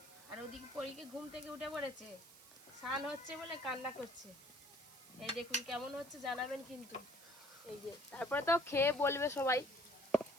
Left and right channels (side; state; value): right; noise; hiss, 19 dB below the sound